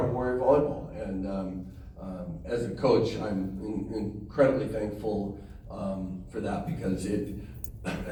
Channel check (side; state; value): both; identical; correlation 1.00